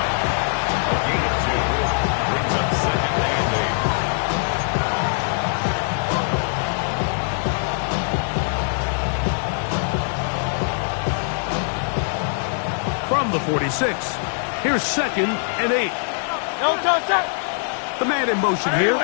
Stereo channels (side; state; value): right; silent; 58 dB below the other